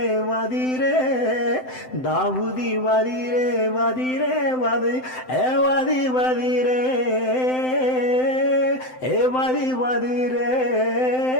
వదిరే దావుది వదిరే వదిరే వది ఏ వది వదిరే ఏ వది వదిరే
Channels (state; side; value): late; right; 7.8 ms